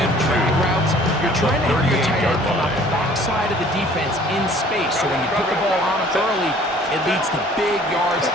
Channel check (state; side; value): normal; both; correlation 0.53